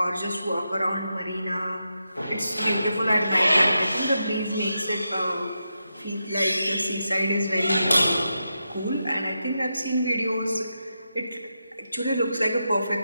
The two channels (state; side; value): inverted; both; correlation -0.87